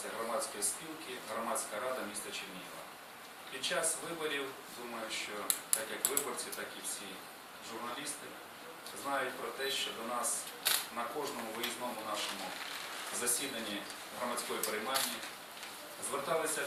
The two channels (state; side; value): identical; both; correlation 1.00